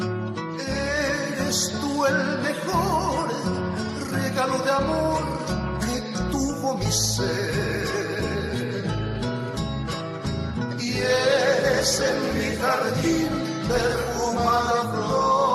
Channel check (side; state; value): both; identical; correlation 1.00